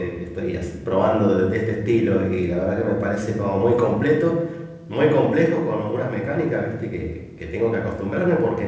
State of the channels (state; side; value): identical; both; correlation 1.00